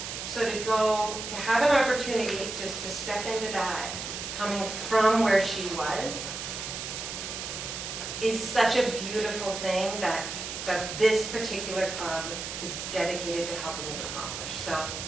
So to have an opportunity to step into that, coming from where she was, is such a beautiful thing that this particular club is dedicated to helping you accomplish. So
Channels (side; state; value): right; noise; hiss, 6 dB below the sound